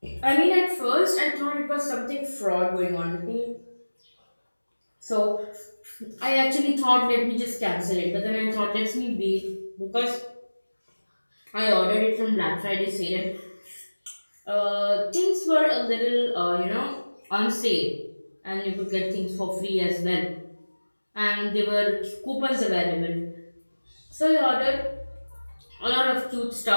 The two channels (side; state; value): both; inverted; correlation -1.00